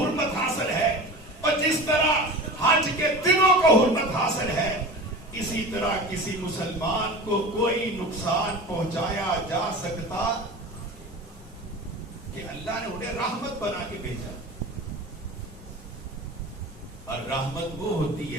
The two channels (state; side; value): normal; both; correlation 0.34